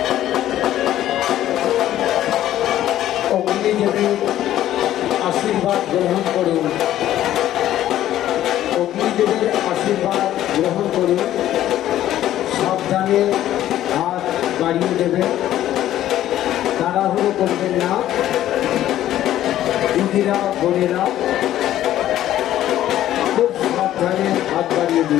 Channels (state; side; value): quieter; right; 12.8 dB